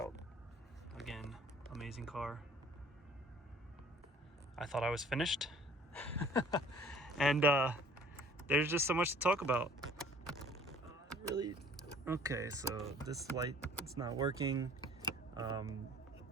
Again, amazing car. I thought I was finished. And there's just so much to talk about. Really? Okay, so this light, it's not working.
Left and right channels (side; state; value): both; normal; correlation 0.53